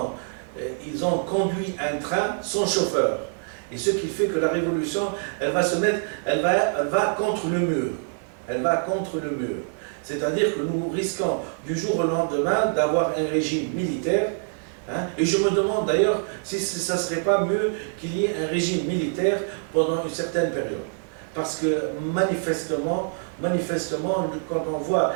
ont conduit un train sans chauffeur. Et ce qui fait que la révolution, elle va contre le mur. Elle va contre le mur. C'est-à-dire que nous risquons du jour au lendemain d'avoir un régime militaire. Hein, et je me demande d'ailleurs si ça ne serait pas mieux qu'il y ait un régime militaire pendant une certaine période. Parce que manifestement, quand on voit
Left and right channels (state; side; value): silent; left; 62 dB below the other